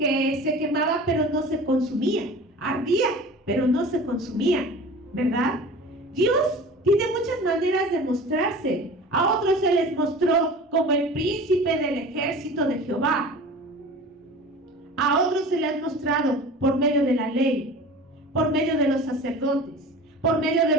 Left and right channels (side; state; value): both; normal; correlation 0.39